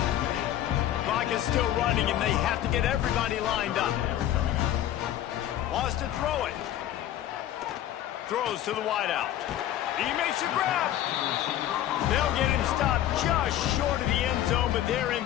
Clock is still running, and they have to get everybody lined up. Wants to throw it. Throws to the wideout. He makes a grab. They'll get him stopped just short of the end zone, but they're in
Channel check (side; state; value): right; quieter; 12.3 dB